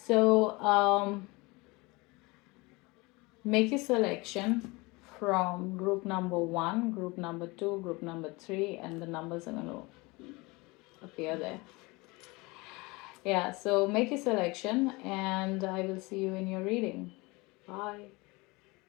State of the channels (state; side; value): quieter; right; 24.6 dB